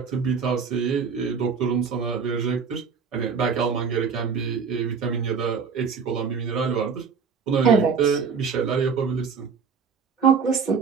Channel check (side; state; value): left; quieter; 5.9 dB